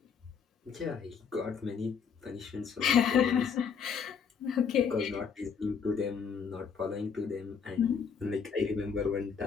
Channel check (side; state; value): right; quieter; 6.5 dB